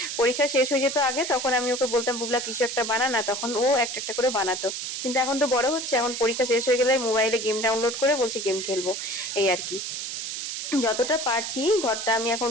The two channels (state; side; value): noise; right; hiss, 5 dB below the sound